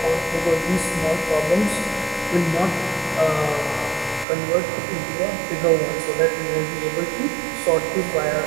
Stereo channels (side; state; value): left; drops out; at 4.2 s